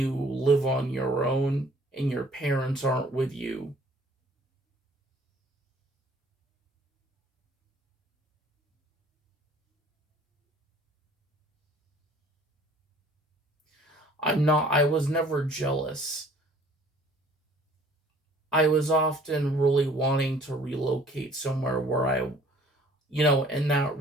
live on your own and your parents aren't with you. I was never jealous. I was often really wanting to relocate somewhere where and that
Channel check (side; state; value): both; normal; correlation 0.54